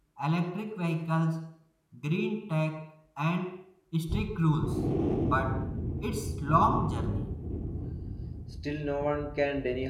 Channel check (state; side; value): identical; both; correlation 1.00